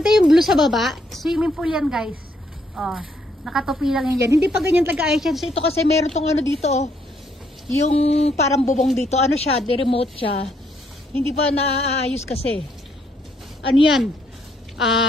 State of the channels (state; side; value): normal; both; correlation 0.72